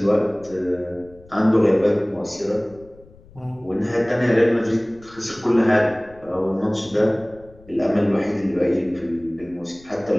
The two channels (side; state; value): left; noise; rumble, 25 dB below the sound